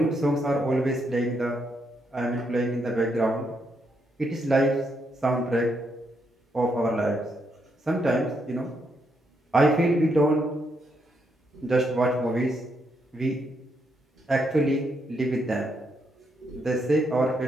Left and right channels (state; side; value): normal; both; correlation 0.78